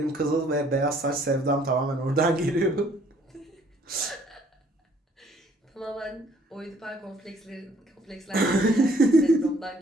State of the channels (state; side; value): normal; both; correlation 0.62